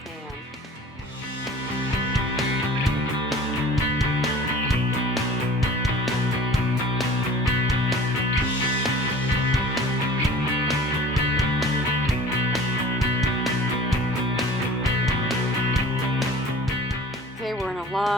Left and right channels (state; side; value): normal; both; correlation 0.44